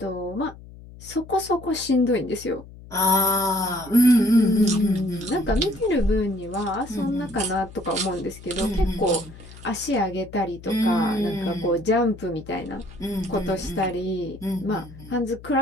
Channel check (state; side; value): noise; left; hum, 18 dB below the sound